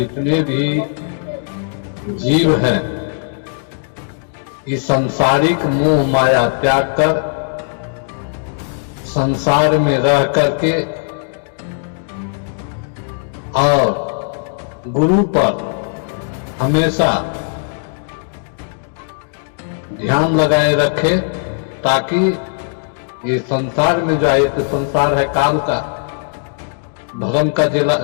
भी जीव हैं इस सांसारिक मोह माया त्याग कर संसार में रह करके और गुरु पर हमेशा ध्यान लगाए रखे, ताकि ये संसार में जो एक संसार है काल का, धर्म का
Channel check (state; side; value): silent; right; digital silence